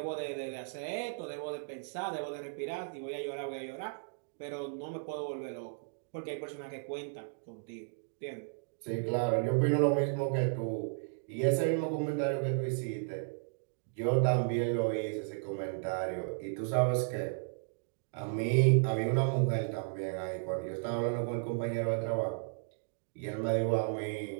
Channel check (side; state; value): left; silent; digital silence